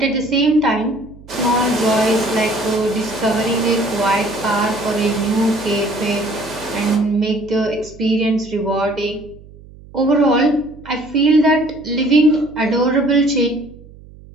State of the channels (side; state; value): right; noise; hum, 21 dB below the sound